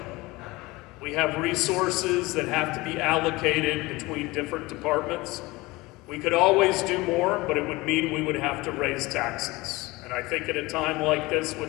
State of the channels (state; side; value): quieter; right; 21.7 dB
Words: We have resources that have to be allocated between different departments. We could always do more, but it would mean we would have to raise taxes. And I think at a time like this,